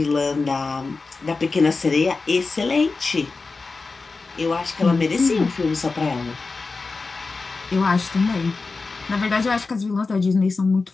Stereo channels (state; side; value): quieter; right; 4.0 dB